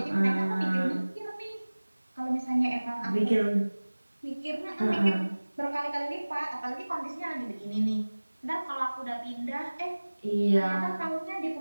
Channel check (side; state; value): both; inverted; correlation -1.00